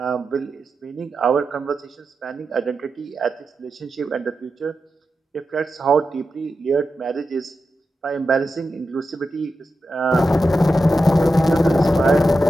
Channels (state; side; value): normal; both; correlation 0.89